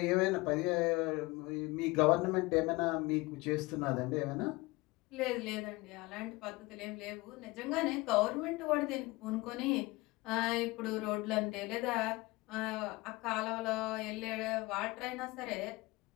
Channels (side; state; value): right; quieter; 22.5 dB